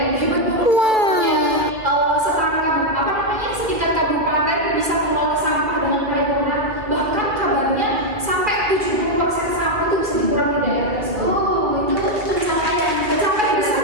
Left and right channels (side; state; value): left; late; 2.1 ms